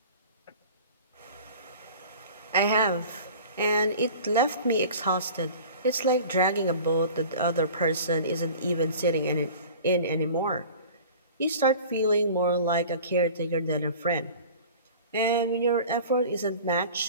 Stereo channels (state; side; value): inverted; both; correlation -0.41